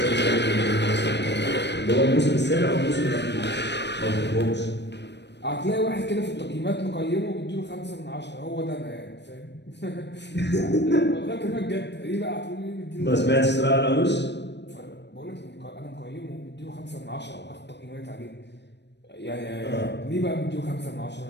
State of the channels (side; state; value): right; late; 0.50 ms